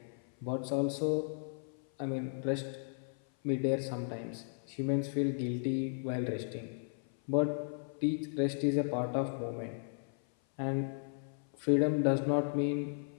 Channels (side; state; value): right; silent; 54 dB below the other